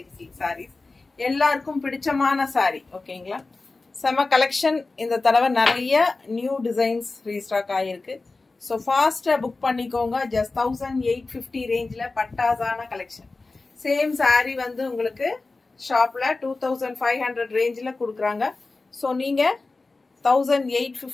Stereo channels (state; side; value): quieter; right; 3.6 dB